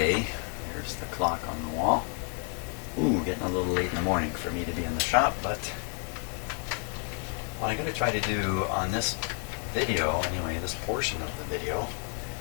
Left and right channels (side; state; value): right; quieter; 36.3 dB